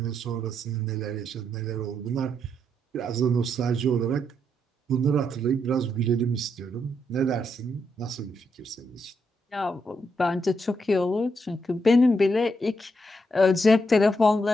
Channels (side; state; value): both; normal; correlation 0.79